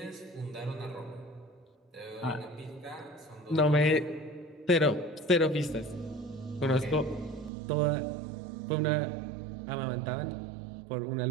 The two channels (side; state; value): left; drops out; at 7.5 s